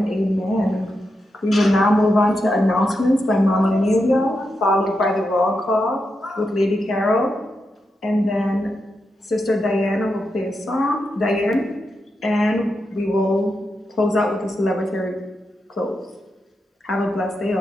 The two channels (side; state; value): both; normal; correlation 0.86